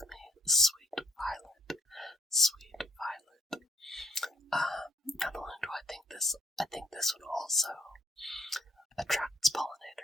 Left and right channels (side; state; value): both; normal; correlation 0.67